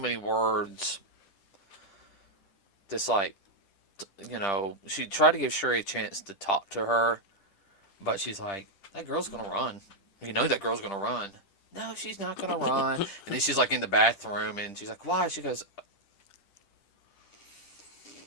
words, just like she tried to give Shuri a chance to talk to her, but she's like, that girl's gonna run. You know that girl's gonna run. No, she's not gonna run. And then she's like in the bathroom, and she's like, why? She goes,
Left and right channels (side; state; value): right; late; 10 ms